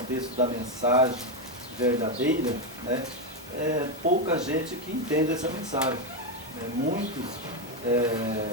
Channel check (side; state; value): both; normal; correlation 0.07